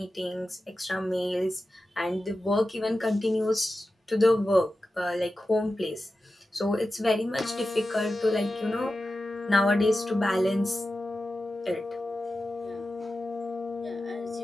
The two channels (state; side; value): normal; both; correlation 0.93